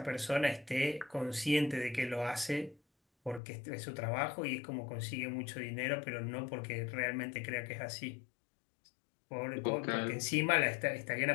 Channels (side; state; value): right; drops out; at 3.4 s